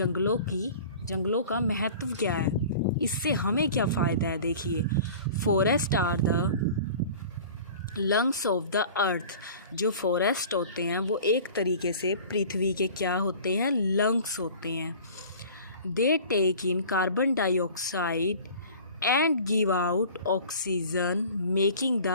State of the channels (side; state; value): both; inverted; correlation -0.43